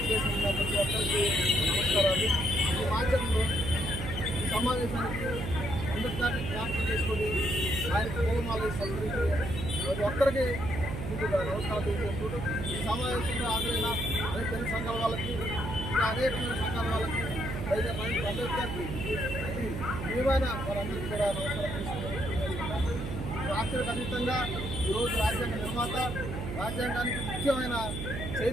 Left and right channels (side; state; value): right; noise; hum, 5 dB below the sound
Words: ప్రతి ఒక్కరికి నమస్కారాలు. ఈ మాధ్యమంలో ఈ సమావేశానికి అంబేద్కర్ని జ్ఞాపకం చేసుకొని ఆయన పూలమాల సంస్కరించి ప్రతి ఒక్కరికి ముందుగా నమస్కారాలు తెలియజేసుకుంటూ ఈ సమావేశంలో హాజరైన అనేక తెలుగు సంఘాల వాళ్ళకి, ఇంకా అనేకమైన సంఘాల వాళ్ళకి, అంబేద్కర్కి విలువైన వారందరికీ కూడా నమస్కారం తెలుసుకుంటున్నాం. రాష్ట్రానికి అతీతంగా ఈరోజు రాజ్యాంగ నిర్మాత, రాజ్యాంగానికి ముఖ్యమైన